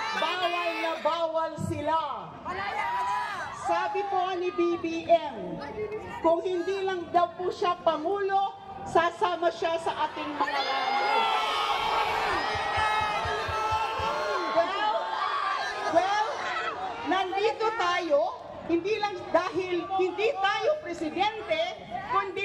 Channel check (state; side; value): identical; both; correlation 1.00